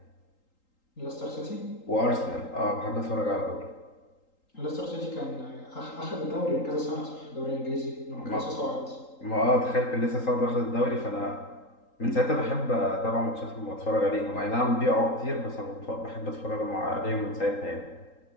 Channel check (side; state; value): right; late; 3.8 ms